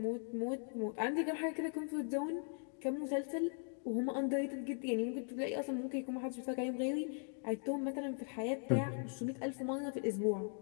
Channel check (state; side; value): silent; right; 51 dB below the other